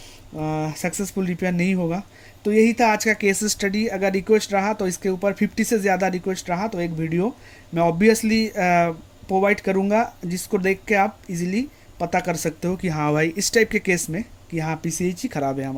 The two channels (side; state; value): both; identical; correlation 1.00